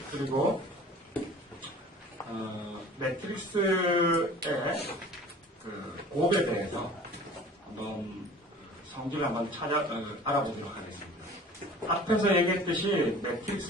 그리고 매트릭스의 그 곱에 대해서 한번 성질을 한번 알아보도록 하겠습니다. 앞에서 얘기했듯이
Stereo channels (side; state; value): both; normal; correlation 0.44